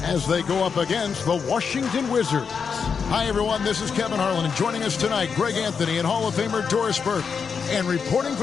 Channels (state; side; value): quieter; right; 6.1 dB